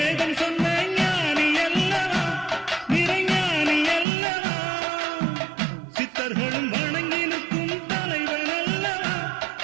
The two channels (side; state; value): left; drops out; at 4.0 s